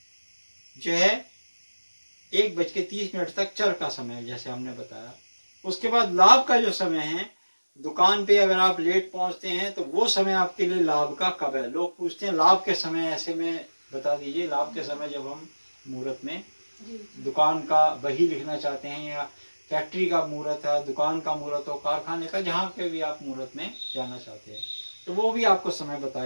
जो है 1:30 तक चर का समय है, जैसे हमने बताया। उसके बाद लाभ का जो समय है, दुकान पे अगर आप लेट पहुंचते हैं तो वो समय आपके लिए लाभ का कब है। लोग पूछते हैं लाभ के समय, ऐसे में बता दीजिए। लाभ के समय जब हम मुहूर्त में दुकान का वही लिखना चाहते हैं, या फैक्ट्री का मुहूर्त है, दुकान का मुहूर्त हो, कारखाने का, जहाँ पे भी आप मुहूर्त में जाना चाहते हैं, तो वो भी आपको समय बता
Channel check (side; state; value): both; inverted; correlation -1.00